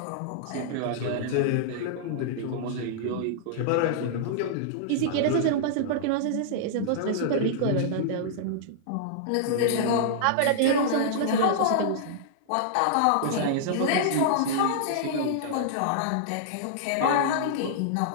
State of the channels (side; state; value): both; different; correlation -0.02